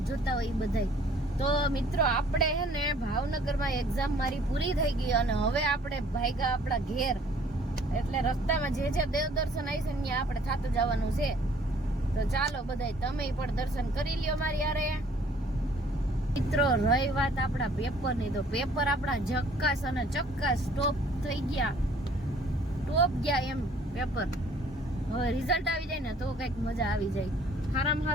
જોતા હોય બધાય. તો મિત્રો, આપણે હે ને ભાવનગરમાં એક્ઝામ મારી પૂરી થઈ ગઈ અને હવે આપણે ભાગ્યા આપણા ઘેર. એટલે રસ્તામાં જે દેવ દર્શન આવી છે ત્યાં આપણે થાતું જવાનું છે. તો ચાલો બધાય, તમે પણ દર્શન કરી લ્યો મારી યારે. મિત્રો, રહી વાત આપણા પેપરની, તો પેપર આપણા ઝક્કાસ અને ચક્કાસ ટોપ થઈ ગયા. ટોપ ગયા એમ પેપર. હવે રિઝલ્ટ આવી જાય ને તો કંઈક મજા આવી જાય. સારામાં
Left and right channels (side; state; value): both; normal; correlation 0.57